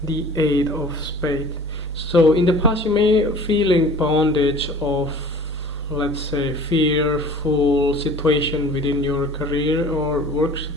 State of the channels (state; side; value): normal; both; correlation 0.45